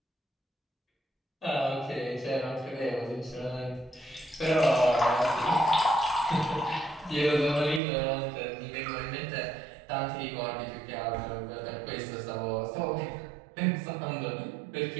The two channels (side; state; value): left; drops out; at 7.8 s